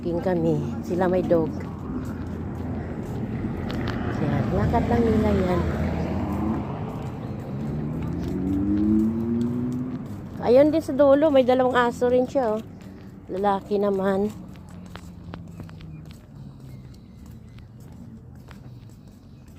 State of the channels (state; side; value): identical; both; correlation 1.00